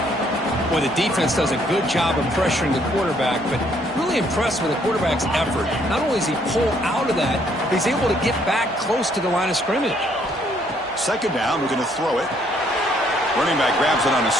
Boy, the defense does a good job of pressuring the quarterback, but really impressed with the quarterback's effort. Not only does he pull out of that, but he's able to get back close to the line of scrimmage. Second down, we're going to throw it. Running back grabs it on a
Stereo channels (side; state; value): both; normal; correlation 0.67